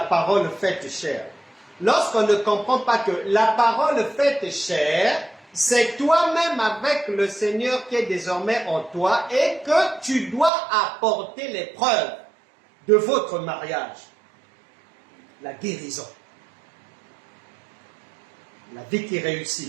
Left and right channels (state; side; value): drops out; left; at 10.5 s